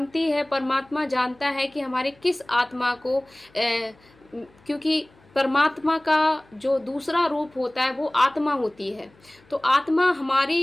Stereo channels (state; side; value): noise; left; hum, 30 dB below the sound